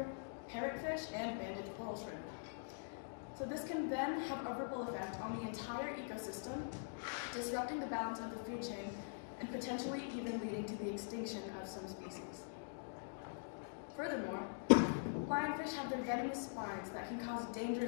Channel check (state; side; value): silent; right; digital silence